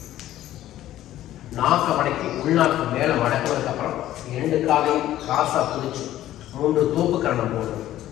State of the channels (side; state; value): right; quieter; 13.5 dB